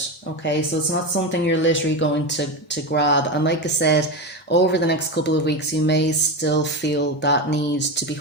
Okay, so it's not something you're literally going to grab. And like I said, over the next couple of weeks, you may still feel that need to be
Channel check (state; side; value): normal; both; correlation 0.17